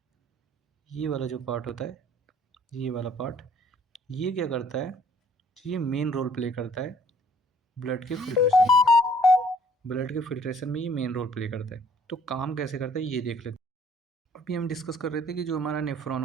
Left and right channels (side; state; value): both; normal; correlation 0.58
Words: ये वाला जो पार्ट होता है, ये वाला पार्ट, ये क्या करता है, ये मेन रोल प्ले करता है ब्लड के फिल्ट्रेशन, ब्लड के फिल्ट्रेशन में ये मेन रोल प्ले करता है। तो काम कैसे करता है ये देख लेते हैं। अभी हम डिस्कस कर रहे थे कि जो हमारा नेफ्रॉन